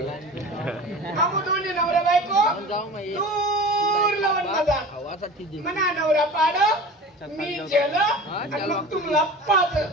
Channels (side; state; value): both; normal; correlation 0.37